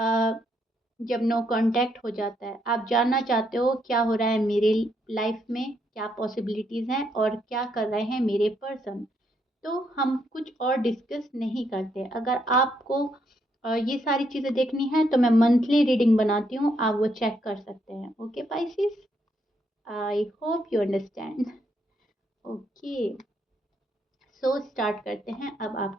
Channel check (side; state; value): both; normal; correlation 0.75